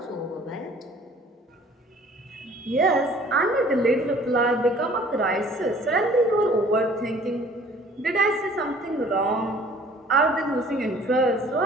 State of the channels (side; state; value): both; normal; correlation 0.53